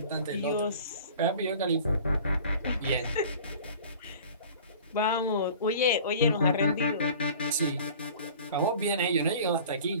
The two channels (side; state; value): both; inverted; correlation -0.44